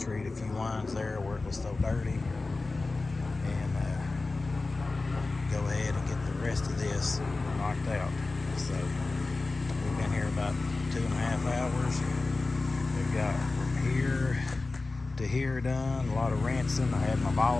a few lines there where it was so dirty, and go ahead and get the rest of this knocked out. So we've been here about 2.5 hours. We've got from here to here done, a lot of rinsing. I had my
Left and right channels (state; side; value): quieter; right; 3.5 dB